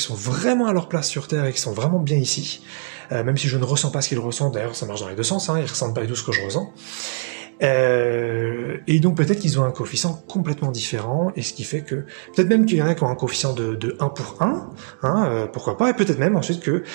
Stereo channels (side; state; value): left; silent; 60 dB below the other